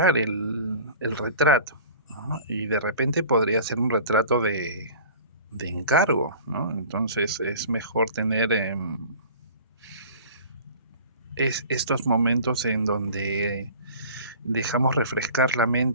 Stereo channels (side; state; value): both; inverted; correlation -0.43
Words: el retrato, ¿no? Y de repente podría ser un retrato de encargo, ¿no? Entonces es mejor tener estos momentos en donde dejamos refrescar la